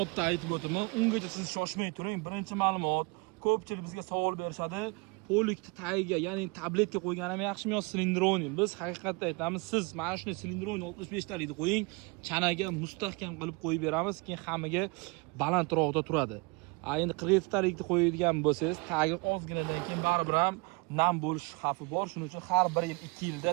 aytib o'taman. Ungacha siz shoshmay turing. Birinchi ma'lumot, ko'pchilik bizga savol berishadi. Polikni tagiga, ya'ni tabletga qo'yganimi yaxshimi yo silindroni? Biz haqiqatda aytamiz, siz mana shuni silindroni 65 talikni qo'ying, chanaga mustahkam qilib qo'yib beramiz, keyin hammaga balandroqda turadi. Endi 47 talikni qo'yadigan bo'lsangiz, tagi ozginadan keyin baribir ham nam bo'lish xavfi bor. Shuning uchun har 1 yil 2 yilda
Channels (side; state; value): left; quieter; 29.0 dB